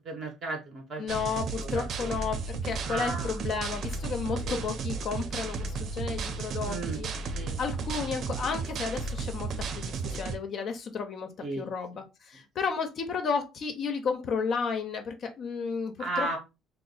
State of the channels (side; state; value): both; normal; correlation 0.62